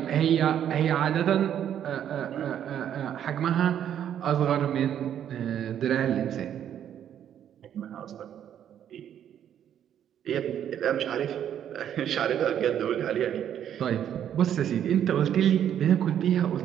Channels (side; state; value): left; quieter; 9.8 dB